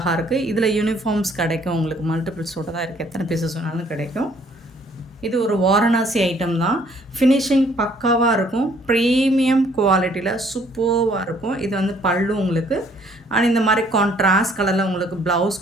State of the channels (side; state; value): both; normal; correlation 0.62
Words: இருக்குது. இதில் யூனிஃபார்ம்ஸ் கிடைக்கும். உங்களுக்கு மல்டிபிள்ஸோட தான் இருக்குது. எத்தனை பீசஸ் வேணாலும் கிடைக்கும். இது ஒரு வாரணாசி ஐட்டம் தான். ஃபினிஷிங் பக்காவாக இருக்கும். ப்ரீமியம் குவாலிட்டியில் சூப்பராக இருக்கும். இது வந்து பல்லு உங்களுக்கு. அண்ட் இந்த மாதிரி கான்ட்ராஸ்ட் கலரில் உங்களுக்கு